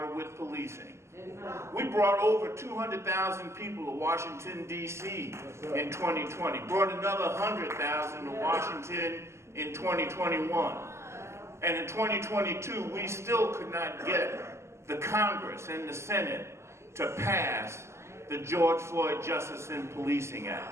with policing. We brought over 200,000 people to Washington, D.C. in 2020. Brought another 100,000 to Washington in 2021. And in 2022, we still could not get the Congress and the Senate to pass the George Floyd Justice in Policing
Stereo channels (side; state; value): left; late; 0.13 ms